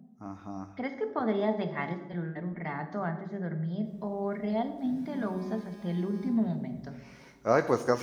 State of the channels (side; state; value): both; identical; correlation 1.00